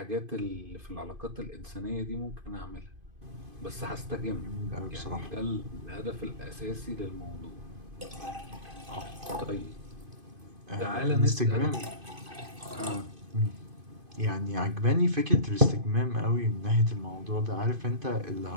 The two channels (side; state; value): left; late; 2.5 ms